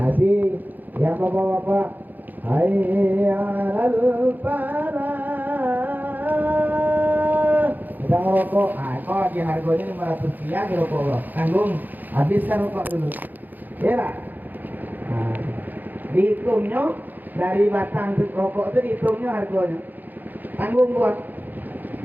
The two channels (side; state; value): left; late; 0.085 ms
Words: yang bapak-bapak, hayya 'alal falah. Sedang rokok, kok di harganya 500 rupiah di rokok lo. Tanggung, habiskan rokok dulu. Kira dihitungnya dari batang rokok itu dihitungnya harganya. Tanggung buat.